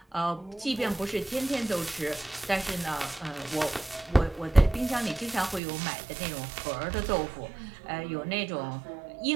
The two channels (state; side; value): drops out; left; at 5.6 s